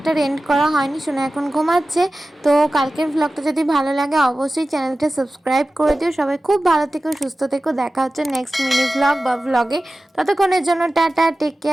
এন্ড করা হয়নি, শোনা এখন ঘুমাচ্ছে। তো কালকের ভ্লগটা যদি ভালো লাগে অবশ্যই চ্যানেলটা সাবস্ক্রাইব করে দিও। সবাই খুব ভালো থেকো, সুস্থ থেকো। দেখা হচ্ছে নেক্সট মিনি ভ্লগ বা ভ্লগে। ততক্ষণের জন্য ta-ta, take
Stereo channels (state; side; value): normal; both; correlation 0.95